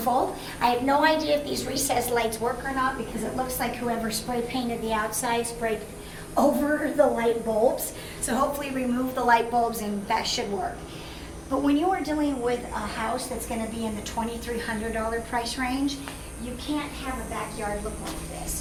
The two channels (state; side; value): identical; both; correlation 1.00